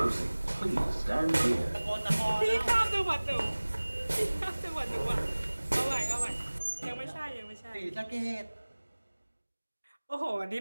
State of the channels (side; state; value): both; inverted; correlation -1.00